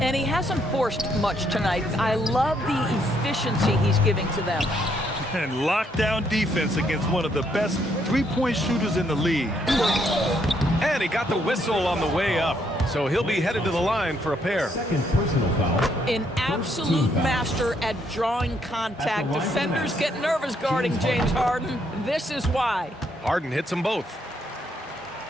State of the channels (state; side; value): normal; both; correlation 0.72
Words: And he hasn't forced much tonight. I love the efficiency he's giving to them. And lockdown defense against one of the best three-point shooters in the league. And he got the whistle on the way up, so he'll be headed to the line for a pair. Second personal foul. An absolute master at drawing contact. Defenders get nervous guarding James Harden. This is why. Harden hits them both.